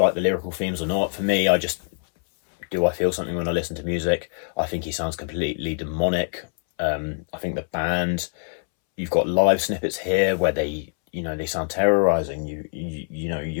the lyrical themes or not. For me, I feel something when I listen to music. I think he sounds completely demonic. I think the band, you've got live snippets here where they sound terrorizing.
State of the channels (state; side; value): silent; right; 63 dB below the other